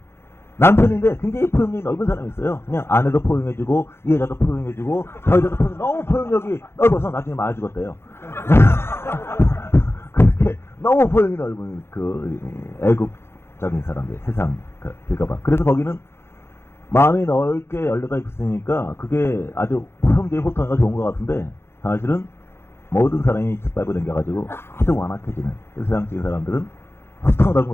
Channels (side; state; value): right; late; 0.12 ms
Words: 남편인데 굉장히 포용력이 넓은 사람이 있어요. 그냥 아내도 포용해주고 이 여자도 포용해주고 저 여자도 너무 포용력이 넓어서 나중에 맞아 죽었대요. 그렇게 너무 포용이 넓은 그 애국적인 사람들, 세상 길가봐. 그래서 거기는 마음이 넓게 열려가 있으니까 그게 아주 형제의 호통이가 좋은 것 같은데 사실은 모든 사람이 짓밟고 댕겨가지고 아주 완악해지는 세상적인 사람들은 호통 넓은 것